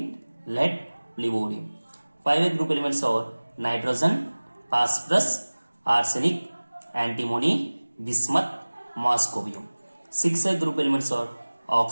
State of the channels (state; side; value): inverted; both; correlation -1.00